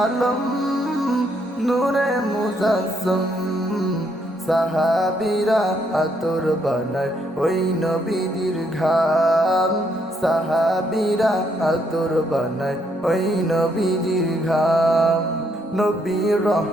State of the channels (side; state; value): both; normal; correlation 0.73